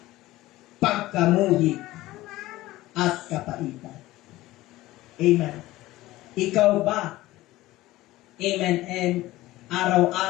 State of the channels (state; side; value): quieter; right; 17.3 dB